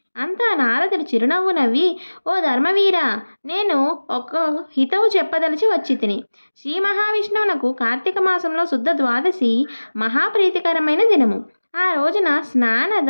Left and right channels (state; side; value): inverted; both; correlation -1.00